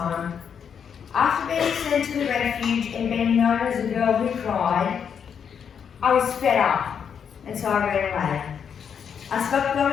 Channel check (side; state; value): right; quieter; 7.4 dB